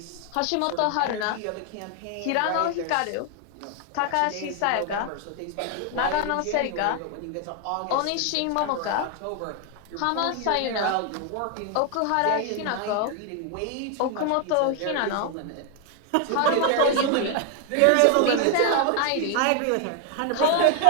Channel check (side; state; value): both; different; correlation 0.00